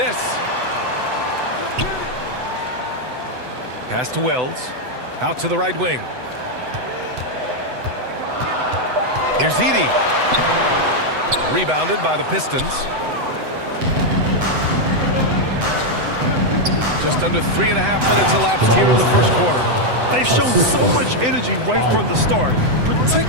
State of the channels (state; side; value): late; left; 7.9 ms